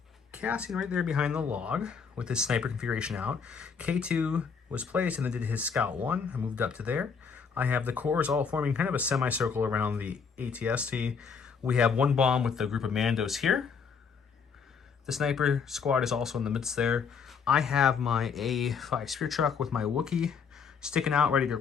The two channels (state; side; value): quieter; right; 6.0 dB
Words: Cassian right there behind the log with his sniper configuration out. K2 was placed and then did his Scout 1. I moved up to there. I have the cores all forming kind of a semicircle around the ATST. We have 1 bomb with the group of Mandos here. The sniper squad is also in the midst there. I have my A5 Spear Truck with my Wookiee sticking out, ready to